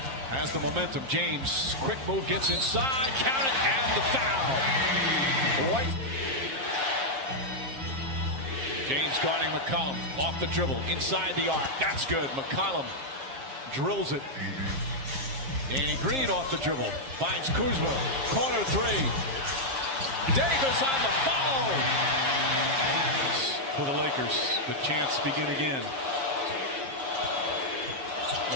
has the momentum. James, quick move, gets inside, count it, and the foul. White. James guarding McCollum, off the dribble, inside the arc. That's good. McCollum drills it. Danny Green off the dribble, finds Kuzma, corner 3. Davis on the follow. For the Lakers, the chance begin again.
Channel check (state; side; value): late; left; 7.5 ms